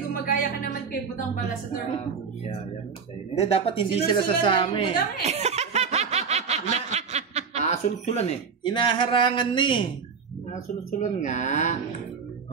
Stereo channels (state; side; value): quieter; left; 5.7 dB